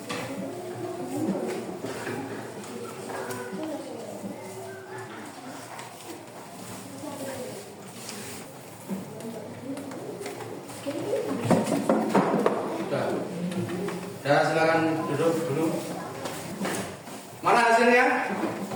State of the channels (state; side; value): identical; both; correlation 1.00